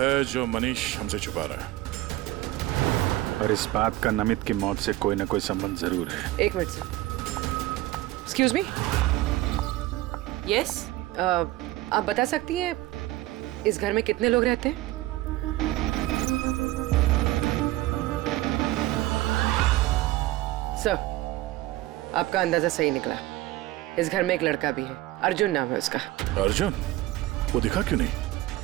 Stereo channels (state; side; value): quieter; left; 16.9 dB